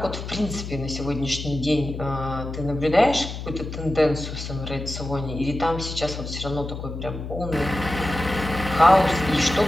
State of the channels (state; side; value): noise; left; hum, 8 dB below the sound